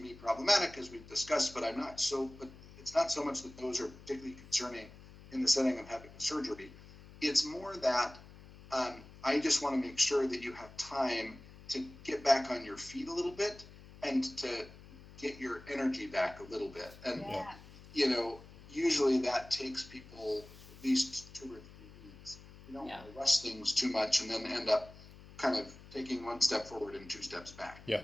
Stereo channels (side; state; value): left; noise; hum, 19 dB below the sound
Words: problematic, as we've discussed, but but it's not so much that those are particularly concerning in the setting of having a surgery. It's more that I just want to make sure that you have time to get back on your feet a little bit and to get your energy back a little bit. And, you know, usually that takes people at least 2 or 3 weeks. You don't want to rush things too much and then end up kind of taking 1 step forward and 2 steps back. Yeah.